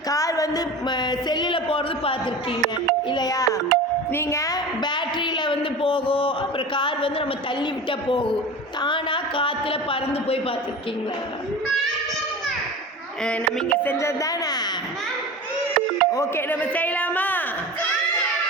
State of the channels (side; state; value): both; normal; correlation 0.33